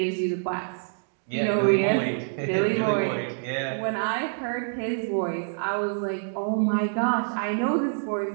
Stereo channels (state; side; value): silent; left; digital silence